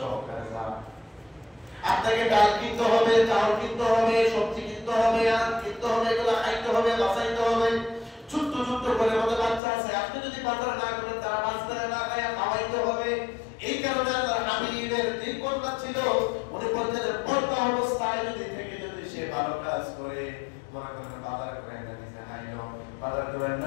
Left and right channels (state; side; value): drops out; right; at 9.6 s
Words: যান। আপনাকে ডাল কিনতে হবে, চাউল কিনতে হবে, সবজি কিনতে হবে, আর কিনতে হবে, এগুলো খাইতে হবে, বাঁচাইতে হবে। ছোট্ট ছোট্ট করে আমাদের বাচ্চা আছে, আপনি যদি বাজারে না করেন তারা বাজারে না খায় খাওয়াইতে হবে। এই কারণে আল্লাহর হাবিবের তিন কন্যা ছিল, উনি বলতেন পর্দা অবস্থায় যদি থেকে যদি সে ভালো কাজ করে, মনে করেন বাজার করে না নিজে খাইলো, বাজার করে